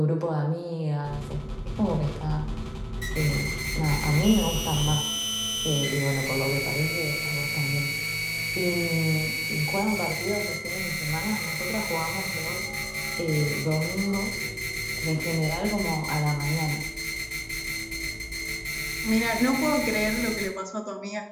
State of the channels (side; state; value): both; identical; correlation 1.00